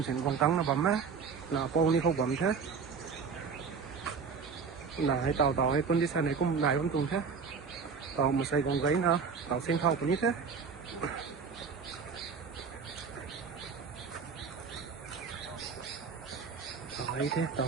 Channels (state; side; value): quieter; left; 5.6 dB